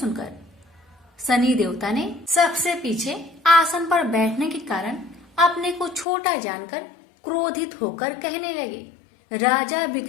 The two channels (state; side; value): drops out; right; at 6.1 s